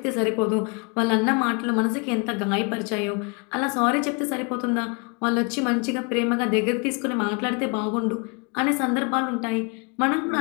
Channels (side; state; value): right; quieter; 34.0 dB